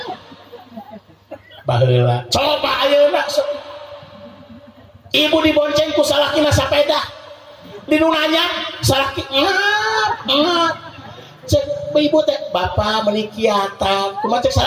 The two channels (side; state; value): both; identical; correlation 1.00